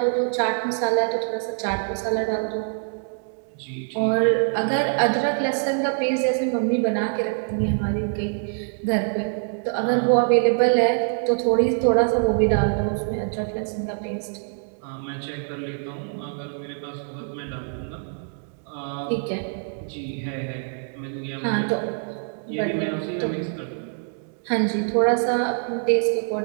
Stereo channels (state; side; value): silent; left; 58 dB below the other